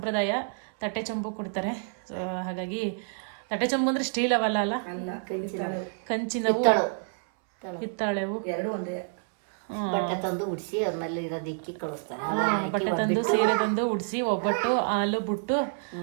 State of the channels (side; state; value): left; silent; 59 dB below the other